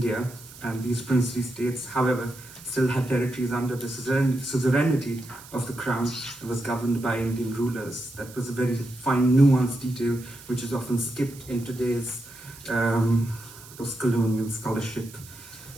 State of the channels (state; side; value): noise; right; hiss, 19 dB below the sound